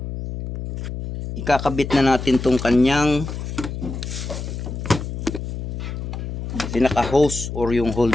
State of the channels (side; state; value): left; noise; hum, 6 dB below the sound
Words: ikakabit na natin tong kanyang pinaka hose or yung